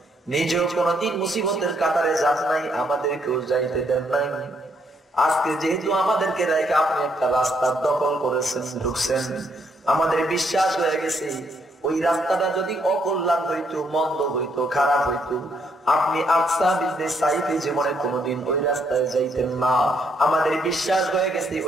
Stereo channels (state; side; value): normal; both; correlation 0.73